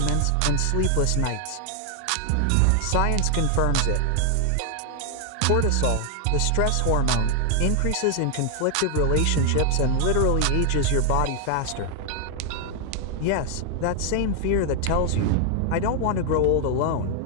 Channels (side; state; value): both; different; correlation 0.00